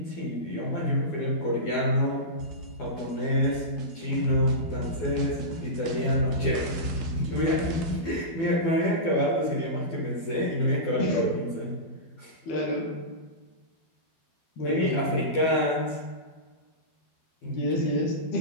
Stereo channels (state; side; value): late; right; 12 ms